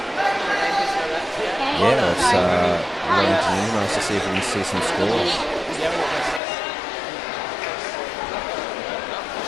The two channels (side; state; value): right; drops out; at 6.4 s